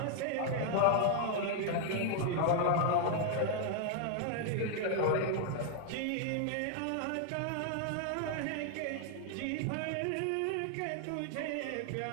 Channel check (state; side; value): different; both; correlation 0.00